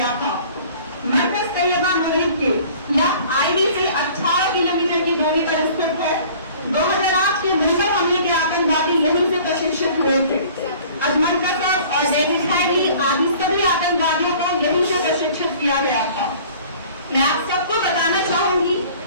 था। मरकज तैयबा मुरीद के यह आईबी से 18 किलोमीटर की दूरी पर स्थित है। 2008 के मुंबई हमले के आतंकवादी यहीं से प्रशिक्षित हुए थे। अजमल कसब और डेविड हैडली आदि सभी आतंकवादियों को यहीं से प्रशिक्षित किया गया था। मैं आप सबको बताना चाहूंगी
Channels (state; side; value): inverted; both; correlation -0.49